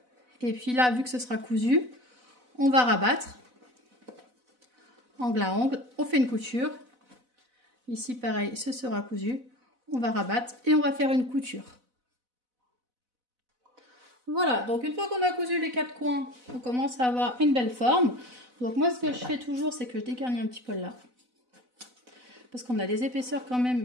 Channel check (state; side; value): late; left; 4.0 ms